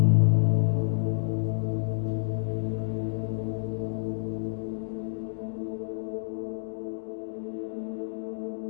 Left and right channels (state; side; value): silent; right; digital silence